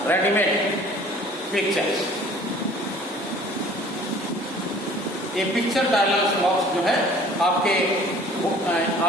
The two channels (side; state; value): both; normal; correlation 0.50